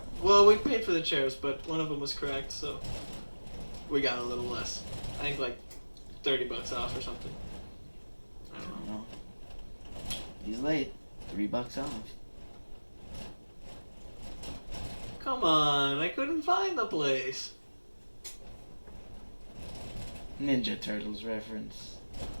Well, we paid for the chairs, but one of them was cracked, so we got a little less. I think like $30 off or something. I don't know. He's late. $3 off. Come on, I couldn't find the place. Ninja Turtles reference.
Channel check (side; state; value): both; inverted; correlation -1.00